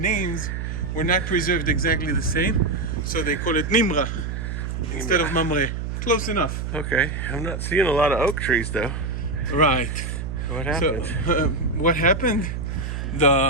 were not preserved exactly the same, so they call it Nimra instead of Mamre. Close enough. Okay. I'm not seeing a lot of oak trees though. Right. What happened? So, what happened?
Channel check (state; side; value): noise; right; hum, 4 dB below the sound